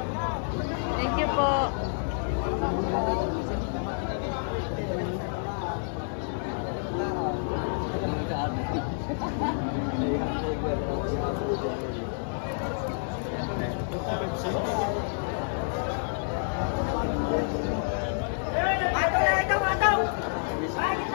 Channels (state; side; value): silent; right; digital silence